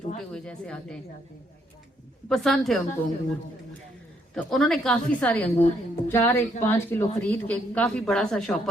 ہوئے جیسے آتے ہیں، پسند تھے ان کو انگور۔ تو انہوں نے کافی سارے انگور 5 کلو خرید کے کافی بڑا سا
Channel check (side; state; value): both; normal; correlation 0.72